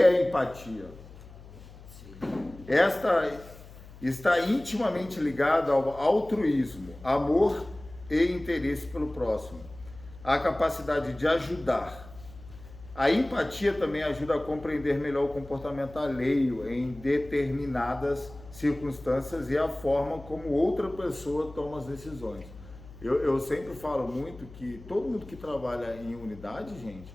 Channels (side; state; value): left; noise; hum, 18 dB below the sound